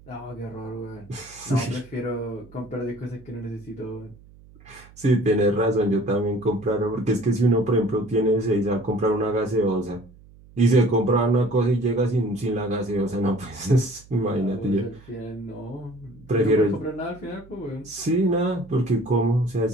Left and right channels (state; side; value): noise; right; hum, 24 dB below the sound